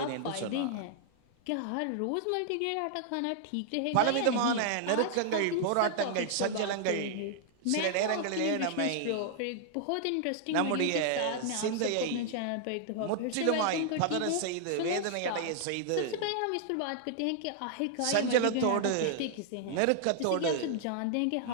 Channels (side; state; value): both; different; correlation -0.01